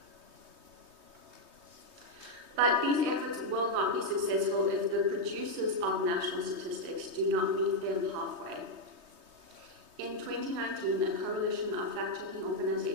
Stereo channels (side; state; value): left; late; 3.2 ms